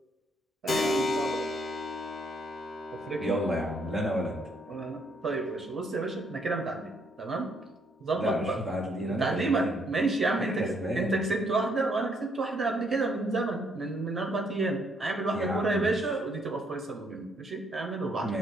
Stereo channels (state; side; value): normal; both; correlation 0.70